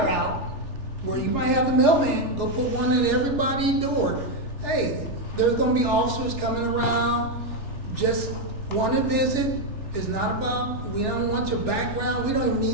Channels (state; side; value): late; right; 3.4 ms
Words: out where you might have the mailman go put one at everybody's door. Hey, there's gonna be officers coming around, just want to visit. It's not about, we don't want your background, we don't even